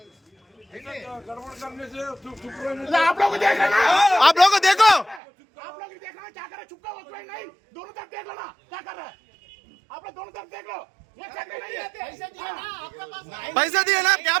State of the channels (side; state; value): left; drops out; at 5.2 s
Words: आप लोग देखो आप लोग देखना क्या कर रहे चुपका हो नहीं दोनों तरफ देख लो ना क्या कर रहे आप लोग दोनों तरफ देख लो ये चेक नहीं है पैसा दिए ना क्या